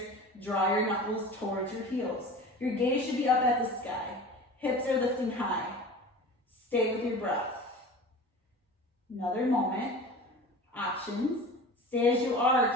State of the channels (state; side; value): normal; both; correlation 0.37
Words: Draw your knuckles towards your heels. Your gaze should be up at the sky. Hips are lifting high. Stay with your breath. Another moment. Options. Stay as you are.